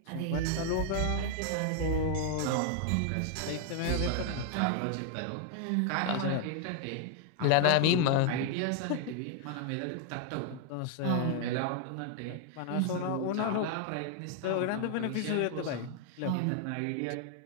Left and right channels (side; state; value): both; different; correlation 0.00